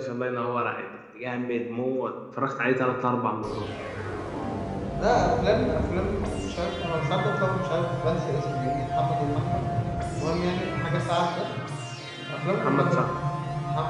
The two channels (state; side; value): identical; both; correlation 1.00